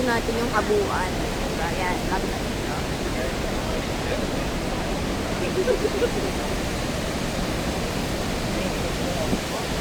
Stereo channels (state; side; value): identical; both; correlation 1.00